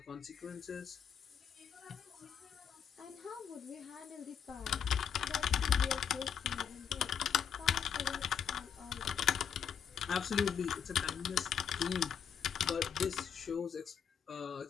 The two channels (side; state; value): right; quieter; 7.8 dB